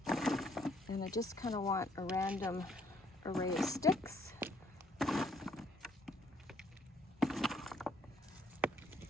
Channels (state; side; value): normal; both; correlation 0.66